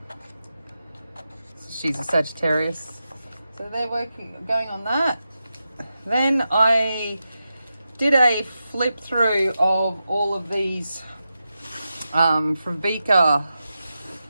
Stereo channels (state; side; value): inverted; both; correlation -0.89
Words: She's a Sagittarius, so they're going on that. Then I did a flip through of all of these from Vika